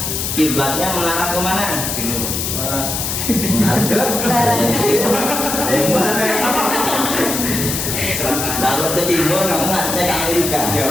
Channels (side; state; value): left; noise; hiss, 2 dB below the sound